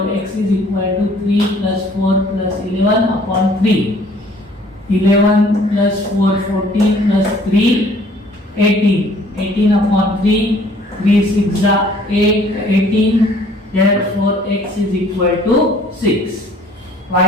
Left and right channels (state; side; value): normal; both; correlation 0.57